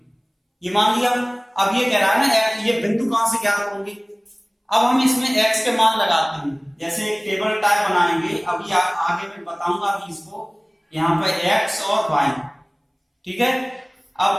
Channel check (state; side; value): identical; both; correlation 1.00